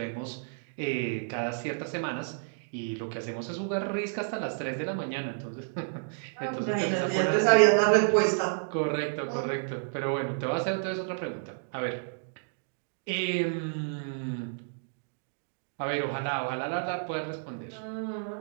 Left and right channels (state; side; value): silent; left; digital silence